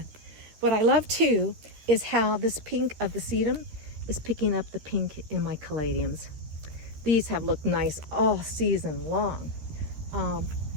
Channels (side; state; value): left; late; 13 ms